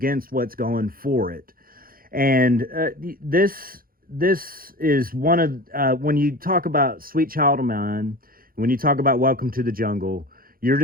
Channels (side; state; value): left; late; 0.42 ms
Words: what's going for it. And this is one of, when you talk about Sweet Child of Mine, when you talk about Welcome to the Jungle, you're